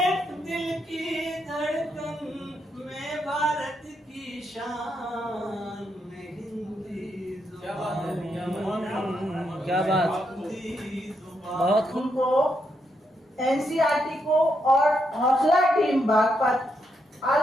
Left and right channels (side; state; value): both; normal; correlation 0.80